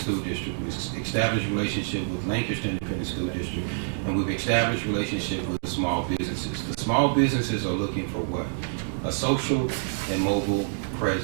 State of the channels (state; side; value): silent; left; digital silence